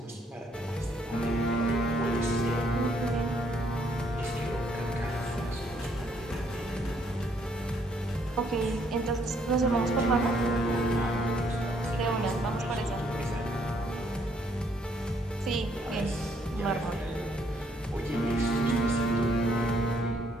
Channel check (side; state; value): both; normal; correlation 0.69